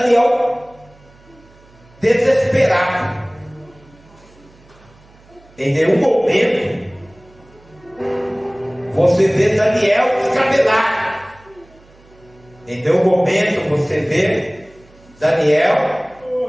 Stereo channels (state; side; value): noise; right; hum, 28 dB below the sound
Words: desesperado. Em nenhum momento você vê Daniel descabelado. Em nenhum momento você vê Daniel